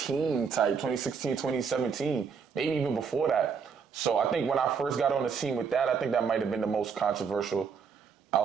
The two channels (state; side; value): quieter; left; 6.1 dB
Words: 2017, maybe even before that. So I think when I first got on the scene with that, I think that might have been the most controversial